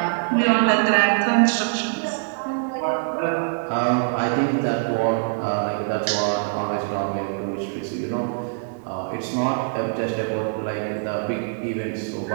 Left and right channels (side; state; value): left; silent; 63 dB below the other